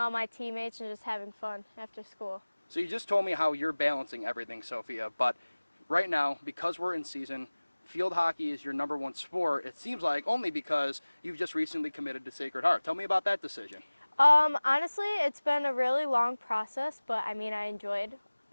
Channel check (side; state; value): both; inverted; correlation -1.00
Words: my teammates and just having fun after school. So you just told me how you're balancing everything, Sophia, but right now, because we're in season, field hockey is your number one sport. It seems like only because you've just recently committed to Sacred Heart. Tell me about that decision. Honestly, it's been a really long process, but I mean, I enjoyed